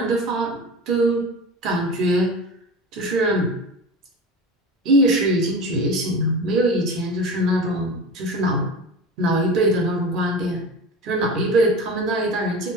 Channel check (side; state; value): both; normal; correlation 0.31